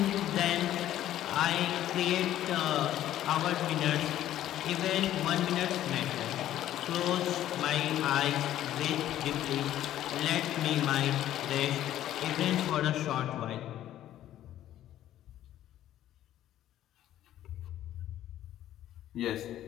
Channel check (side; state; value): right; quieter; 12.5 dB